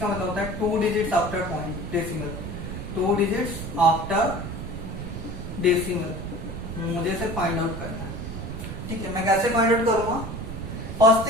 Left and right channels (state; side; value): noise; right; rumble, 7 dB below the sound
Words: का मतलब होता है 2 digits after point decimal, 2 digits after decimal मुझे से फाइंड आउट करना है। ठीक है, मैं कैसे फाइंड आउट करूंगा? फर्स्ट